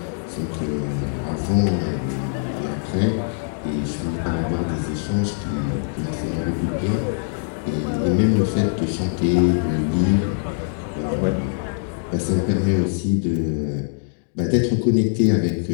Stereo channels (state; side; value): silent; right; digital silence